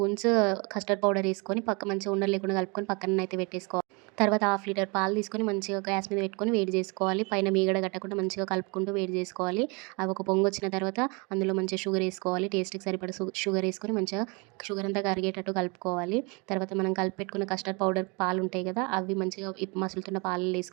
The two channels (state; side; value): quieter; left; 30.5 dB